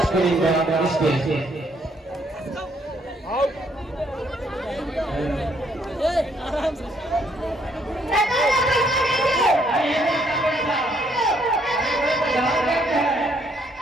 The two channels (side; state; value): both; normal; correlation 0.69